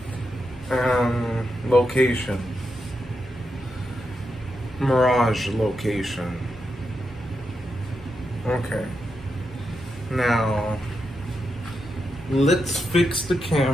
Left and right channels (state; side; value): normal; both; correlation 0.85